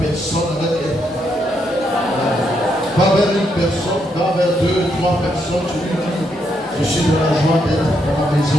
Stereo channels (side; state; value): both; normal; correlation 0.77